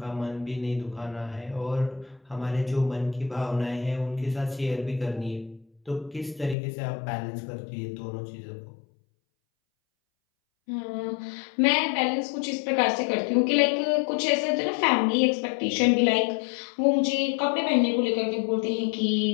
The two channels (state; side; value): drops out; right; at 6.6 s